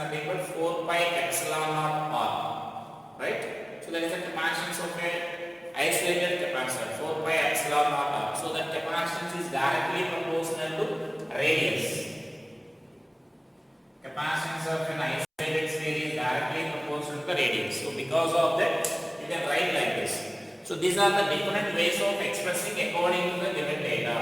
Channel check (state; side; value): identical; both; correlation 1.00